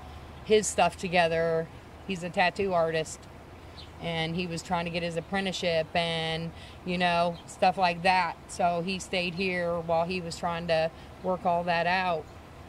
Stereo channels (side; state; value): both; identical; correlation 1.00